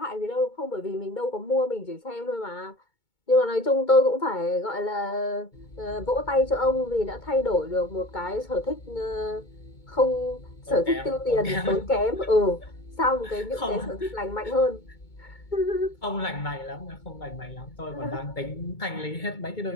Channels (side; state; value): right; late; 2.2 ms